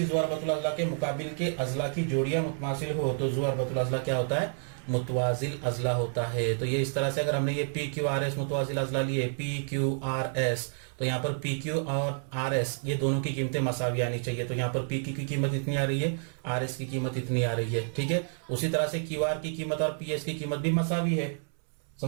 ज़ुअरबतुल अजला के मुकाबिल के अजला की जोड़ियां मुतमासिल हो तो ज़ुअरबतुल अजला क्या होता है, मुतवाजिल अजला होता है। तो ये इस तरह से अगर हमने ये पी क्यू आर एस मुतवाजिल अजला लिए, पी क्यू आर एस, तो यहाँ पर पी क्यू और आर एस ये दोनों की कीमतें मसावी आनी चाहिए। तो यहाँ पर पी क्यू की कीमत इतनी आ रही है, आर एस की कीमत इतनी आ रही है, ठीक है। उसी तरह से क्यू आर की कीमत और पी एस की कीमत भी मसावी है,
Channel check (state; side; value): silent; left; 58 dB below the other